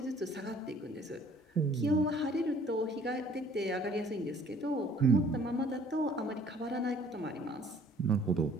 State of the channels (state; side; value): normal; both; correlation 0.56